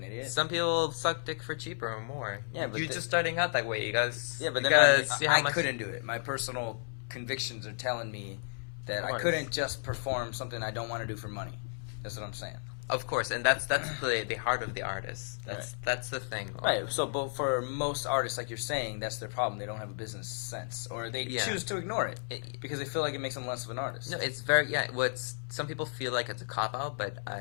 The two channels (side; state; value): right; silent; 56 dB below the other